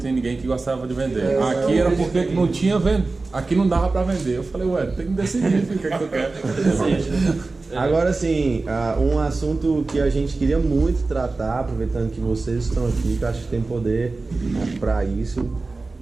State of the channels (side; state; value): left; quieter; 3.6 dB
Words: ninguém que gostava de vender. Aqui era porque não tinha aqui não dava pra vender. Eu falei: ué, tem que decidir o que é que tu quer. Agora sim, um assunto que a gente queria muito tratar, aproveitando que vocês estão aqui, que eu acho que tem poder pra isso,